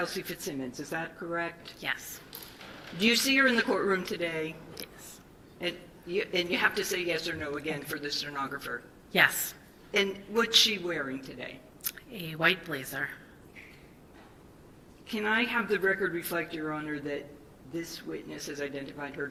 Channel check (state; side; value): identical; both; correlation 1.00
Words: Fitzsimmons, is that correct? Yes. Do you see her in the courtroom today? Yes. And you have to say yes or no again for the stenographer. Yes. And what's she wearing today? A white blazer. Can I have the record reflect, Your Honor, that this witness has identified her